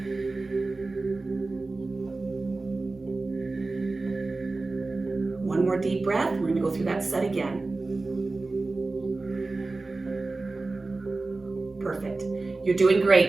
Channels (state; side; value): quieter; left; 3.4 dB